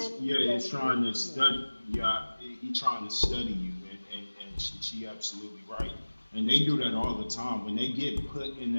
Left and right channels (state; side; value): inverted; both; correlation -1.00